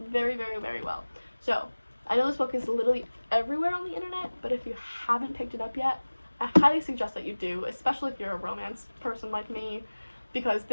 very, very, very well. So I know this book is literally everywhere on the internet, but if you haven't picked it up yet, I highly suggest that you do, especially if you're a romance person like me, because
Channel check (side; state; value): both; inverted; correlation -1.00